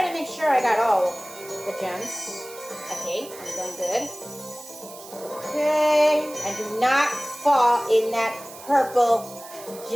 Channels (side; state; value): right; noise; hiss, 17 dB below the sound